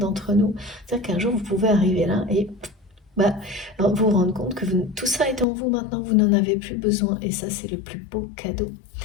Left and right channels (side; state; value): right; drops out; at 5.5 s